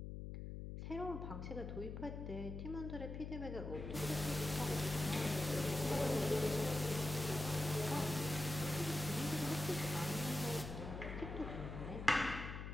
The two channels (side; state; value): left; noise; hum, 7 dB below the sound